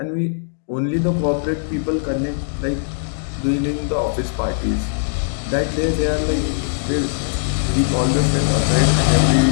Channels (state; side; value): silent; right; digital silence